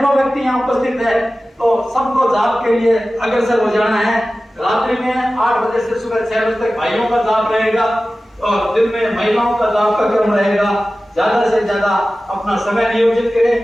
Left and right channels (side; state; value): both; normal; correlation 0.96